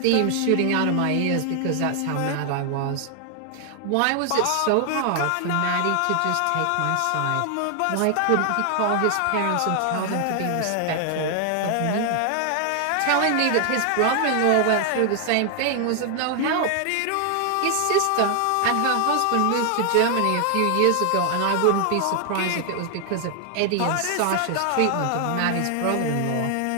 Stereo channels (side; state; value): both; different; correlation 0.00